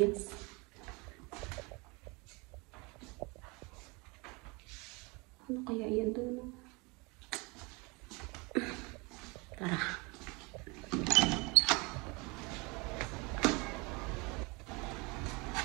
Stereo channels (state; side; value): quieter; left; 27.6 dB